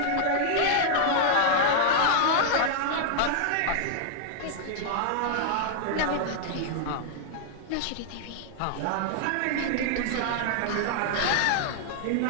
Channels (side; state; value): both; different; correlation -0.01